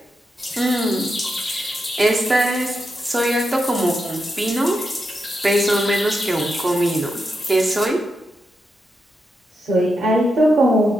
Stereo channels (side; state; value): both; normal; correlation 0.86